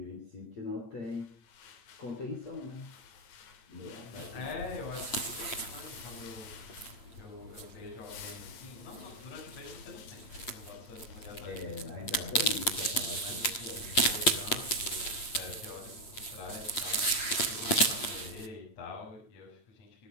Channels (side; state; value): right; late; 8.6 ms